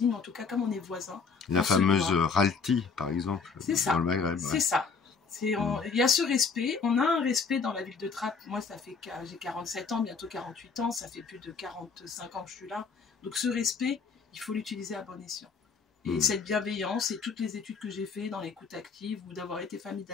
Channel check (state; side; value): quieter; right; 5.2 dB